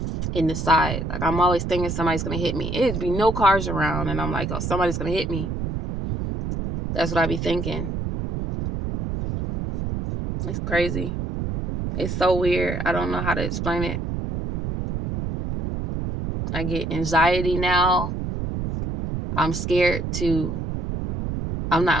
in the side. Like I'm always thinking somebody's going to hit me. It'd be no cars around. And I'm like, oh, somebody's going to hit me. That's what I be thinking. It's crazy. It's so weird. I don't know how to explain it. I get anxiety now. I'm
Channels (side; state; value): right; noise; rumble, 3 dB below the sound